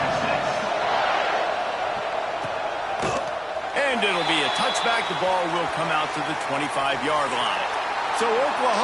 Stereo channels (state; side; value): identical; both; correlation 1.00